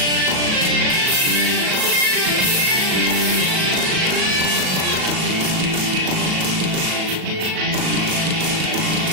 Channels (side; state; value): left; late; 37 ms